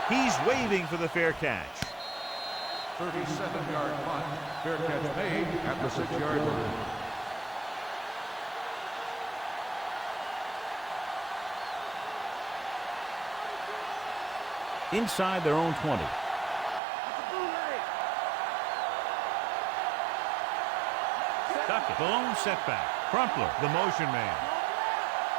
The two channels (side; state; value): left; drops out; at 16.8 s